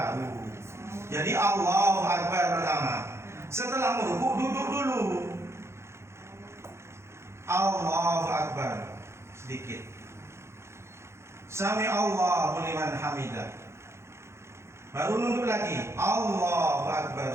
Jadi Allahu Akbar pertama. Setelah ruku duduk dulu. Allahu Akbar sedikit. Sami Allahu liman hamidah. Baru nunduk lagi. Allahu Akbar,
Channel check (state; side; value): late; left; 0.13 ms